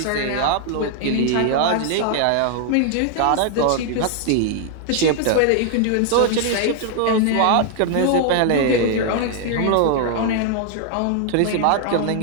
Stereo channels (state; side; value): different; both; correlation 0.00